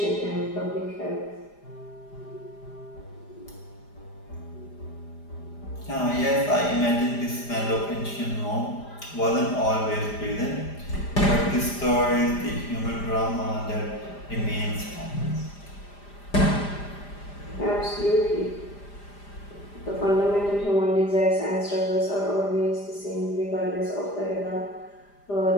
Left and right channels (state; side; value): late; right; 5.0 ms